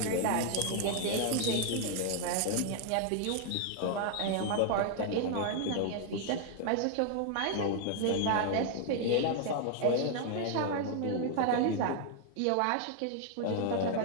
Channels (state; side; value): different; both; correlation 0.00